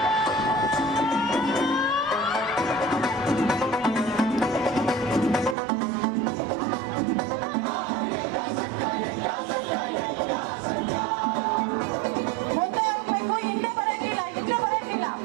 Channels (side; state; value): left; drops out; at 5.6 s